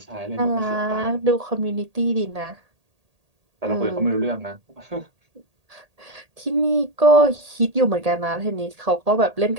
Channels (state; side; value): late; left; 1.8 ms